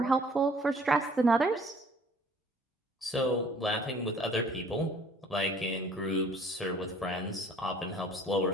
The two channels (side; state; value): both; normal; correlation 0.55